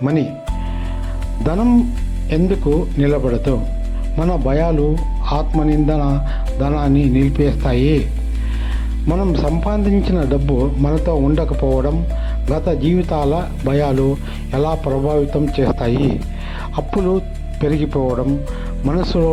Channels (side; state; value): both; identical; correlation 1.00